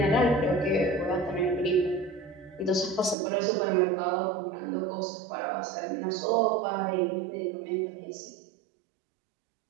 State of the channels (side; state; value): left; drops out; at 3.2 s